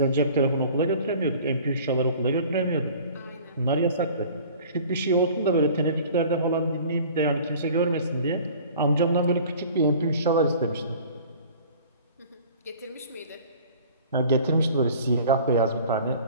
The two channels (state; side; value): inverted; both; correlation -0.46